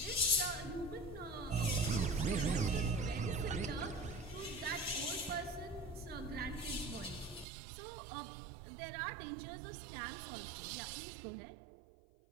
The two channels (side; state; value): left; drops out; at 7.5 s